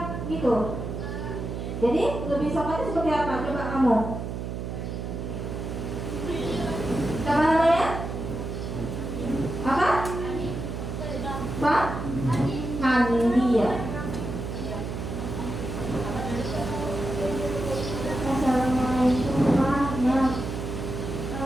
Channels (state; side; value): noise; right; hum, 5 dB below the sound